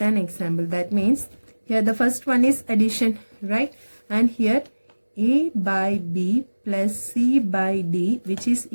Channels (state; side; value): inverted; both; correlation -1.00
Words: an example. That means here the first one is addition, right? And here A by B plus C by D, which is